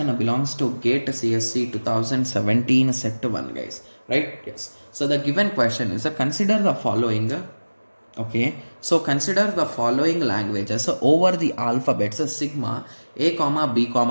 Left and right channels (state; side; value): inverted; both; correlation -1.00